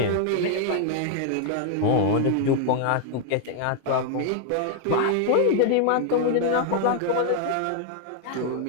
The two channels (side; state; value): both; different; correlation 0.00